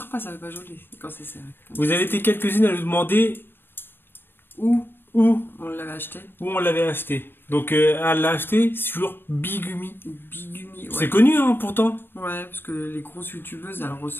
pas, ça va pas joli quand c'est serré. Vous avez été quelques-unes à nous demander où on l'avait acheté. Où on l'avait acheté. Donc elle l'a acheté sur Bigumi. Bigumi, ouais. C'est connu hein, pourtant. Ouais, parce que les grosses youtubeuses, elles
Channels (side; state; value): right; late; 0.10 ms